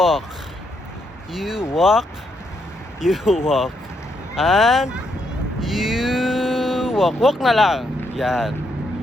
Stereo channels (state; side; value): normal; both; correlation 0.77